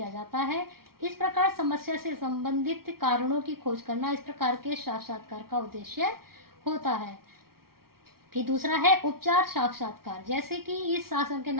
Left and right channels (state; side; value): late; left; 0.94 ms